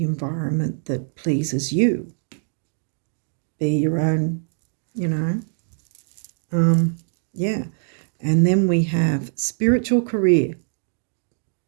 environment that pleases you. Be your own, yeah. And then we have spiritual career.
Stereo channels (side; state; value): left; silent; 63 dB below the other